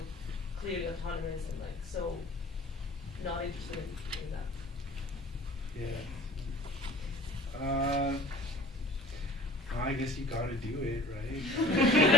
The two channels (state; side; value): normal; both; correlation 0.47